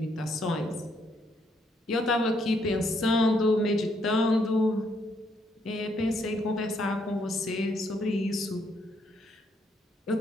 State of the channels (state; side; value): normal; both; correlation 0.73